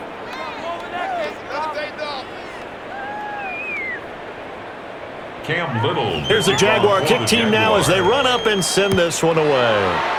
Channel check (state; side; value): identical; both; correlation 1.00